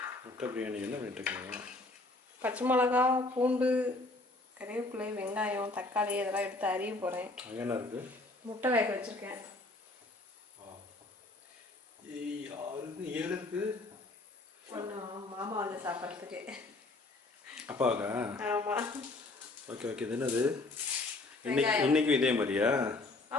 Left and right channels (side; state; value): right; quieter; 3.1 dB